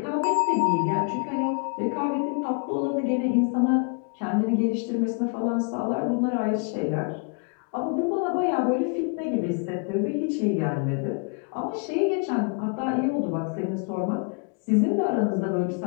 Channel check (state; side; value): quieter; right; 37.5 dB